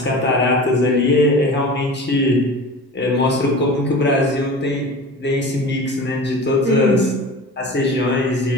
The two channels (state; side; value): normal; both; correlation 0.35